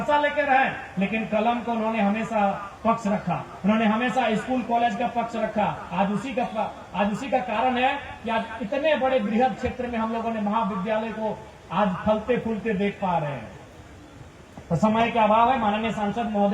लेके रहे, लेकिन कलम को उन्होंने हमेशा पक्ष रखा, उन्होंने हमेशा स्कूल कॉलेज का पक्ष रखा। आज उसी का कारण है कि आज इतने बड़े बृहद क्षेत्र में हम लोगों ने महाविद्यालय को आज फलते फूलते देख पा रहे हैं। तो समय के अभाव है, माननीय सांसद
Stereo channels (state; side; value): identical; both; correlation 1.00